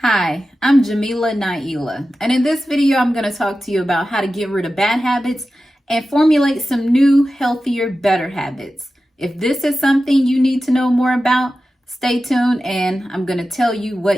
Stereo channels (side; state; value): both; normal; correlation 0.93